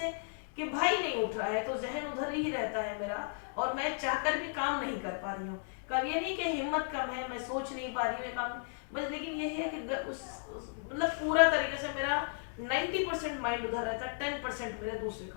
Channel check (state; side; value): silent; right; digital silence